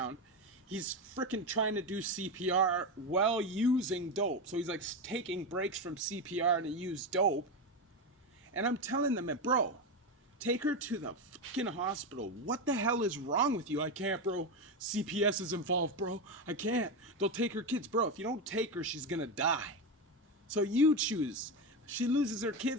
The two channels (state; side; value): normal; both; correlation 0.14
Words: He's freaking trying to do CPR while using dope. So he's like taking breaks from CPR to use dope. And I'm telling them, bro, take her to the fucking hospital. What the hell is wrong with you? I can't, bro. CPS is involved, bro. I can't. They'll take her kids. Bro, if you don't take her, she's gonna die. So you choose. She loses her